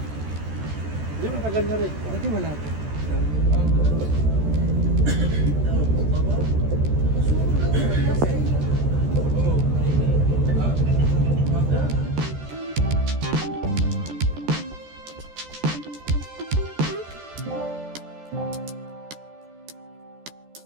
Hindi, matagal na rin. Dati wala to.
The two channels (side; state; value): left; late; 14 ms